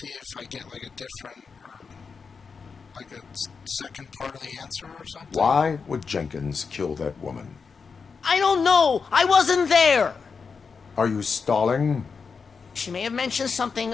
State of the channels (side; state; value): right; quieter; 5.4 dB